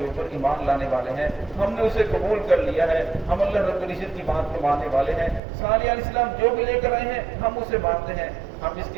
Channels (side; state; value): left; drops out; at 5.4 s